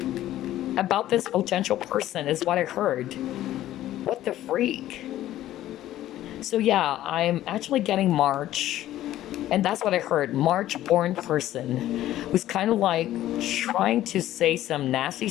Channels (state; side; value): quieter; right; 13.7 dB